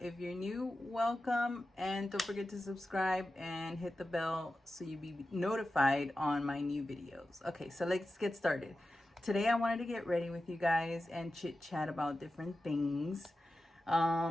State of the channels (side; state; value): both; normal; correlation 0.93